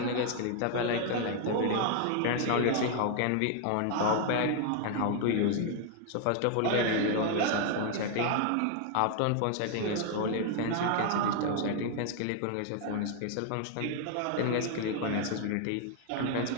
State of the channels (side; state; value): both; different; correlation 0.00